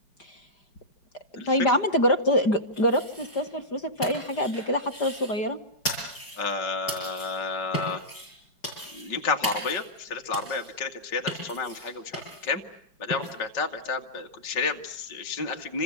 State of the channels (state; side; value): late; right; 4.8 ms